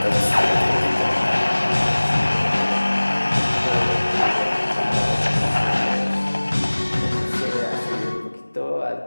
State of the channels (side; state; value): both; inverted; correlation -1.00